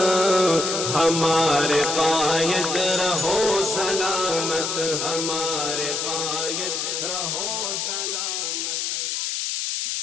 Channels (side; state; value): left; noise; hiss, 1 dB below the sound